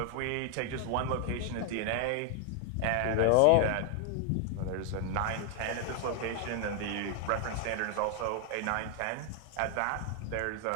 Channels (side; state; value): both; different; correlation 0.00